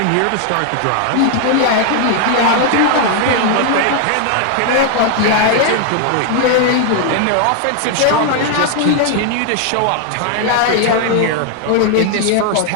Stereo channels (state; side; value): different; both; correlation 0.00